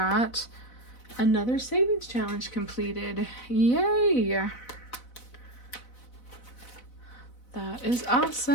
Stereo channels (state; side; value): late; right; 4.0 ms